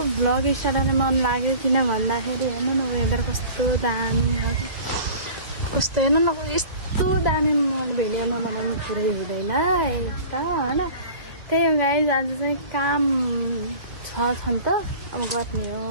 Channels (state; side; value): late; left; 2.1 ms